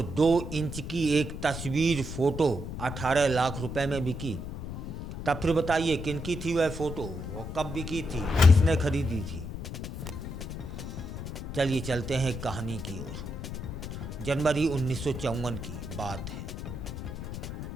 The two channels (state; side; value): noise; left; rumble, 7 dB below the sound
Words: 2 इंच की एक तस्वीर फोटो 18 लाख रुपए में बिकी। तब फिर बताइए किनकी थी वह फोटो और कब बिकी थी, किसने खरीदी थी। चलिए चलते हैं कहानी की ओर। जनवरी 1954 की बात है।